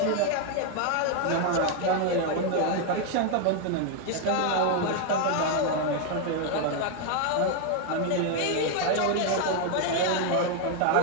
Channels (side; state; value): both; different; correlation 0.01